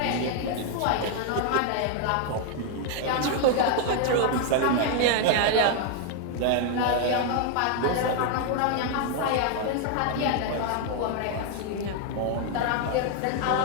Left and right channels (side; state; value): both; different; correlation 0.00